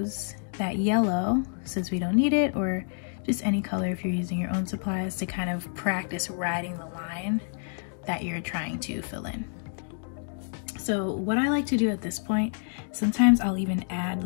that yellow, since we don't need it, or just any color if you're using your own supplies, to kind of practice writing the line that you're trying to fill in. So what I like to do at this point, sometimes I'll even add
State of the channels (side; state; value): right; silent; digital silence